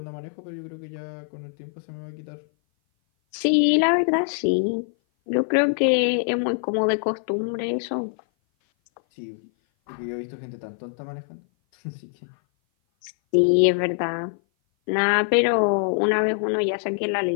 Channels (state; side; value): silent; right; 57 dB below the other